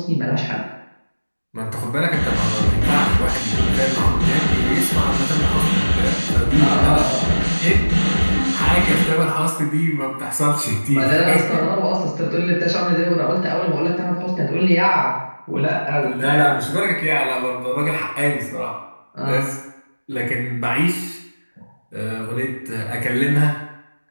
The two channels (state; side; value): inverted; both; correlation -1.00